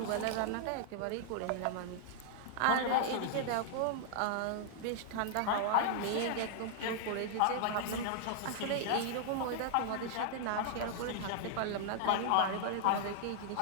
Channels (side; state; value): both; different; correlation -0.01